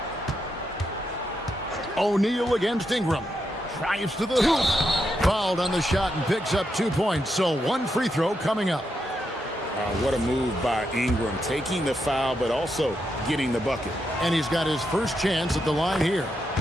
O'Neal against Ingram. Drives to the hoop. Fouled on the shot and picks up 2 points. So one free throw coming up. What a move by Ingram. Taking the foul, but also getting the bucket. And he's got his first chance at the line here.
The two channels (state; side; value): normal; both; correlation 0.83